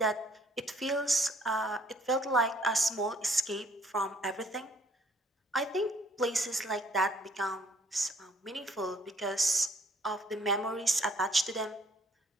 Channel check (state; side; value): normal; both; correlation 0.63